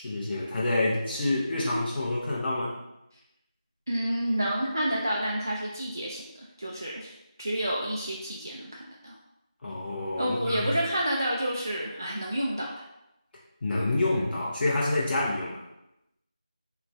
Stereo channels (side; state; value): both; inverted; correlation -0.86